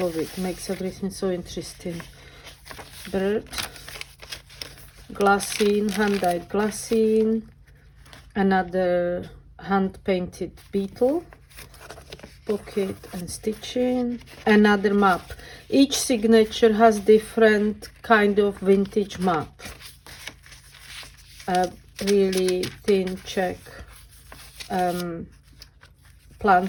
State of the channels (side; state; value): both; identical; correlation 1.00